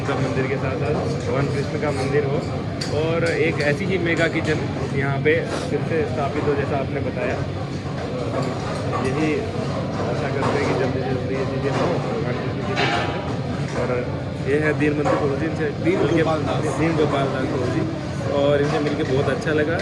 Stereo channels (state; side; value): identical; both; correlation 1.00